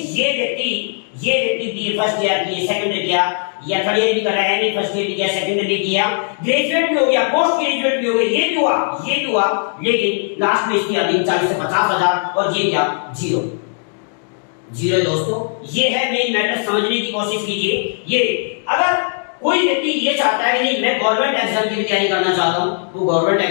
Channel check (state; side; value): silent; right; 57 dB below the other